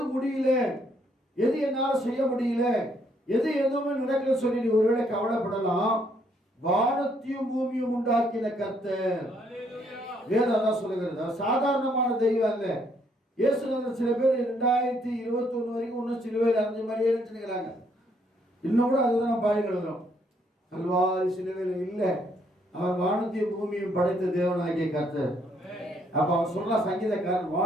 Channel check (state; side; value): normal; both; correlation 0.70